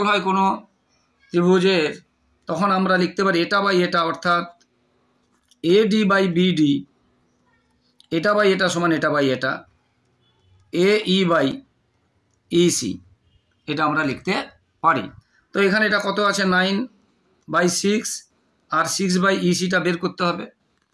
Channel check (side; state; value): both; identical; correlation 1.00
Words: হয় কোনো ত্রিভুজের, তখন আমরা লিখতে পারি এটা বাই এটা, অর্থাৎ এডি বাই বিডি, এটা বাই এটা সমান এটা বাই এটা, এ ই বাই ইসি, এটা আমরা লিখতে পারি। তো এখানে এটা কত আছে 9/6, আর 6/ইসিটা বের করতে হবে।